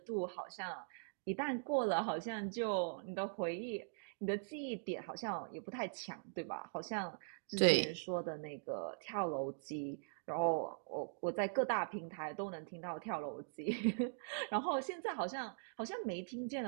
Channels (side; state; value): left; silent; digital silence